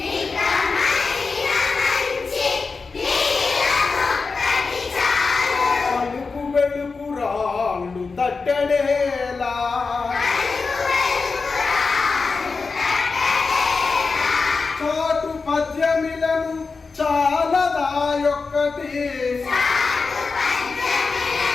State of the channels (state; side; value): quieter; right; 4.4 dB